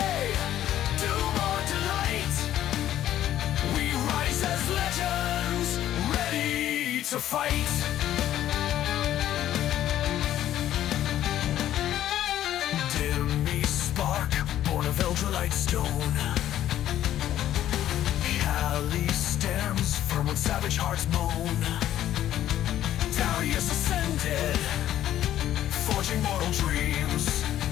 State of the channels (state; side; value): quieter; right; 12.2 dB